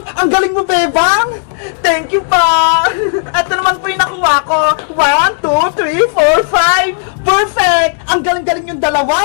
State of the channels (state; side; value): silent; right; digital silence